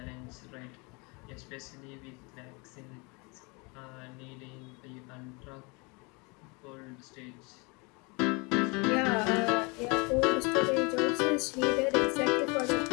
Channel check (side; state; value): right; quieter; 29.4 dB